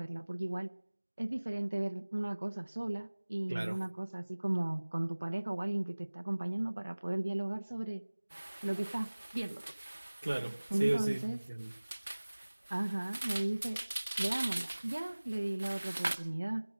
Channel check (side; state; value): both; inverted; correlation -1.00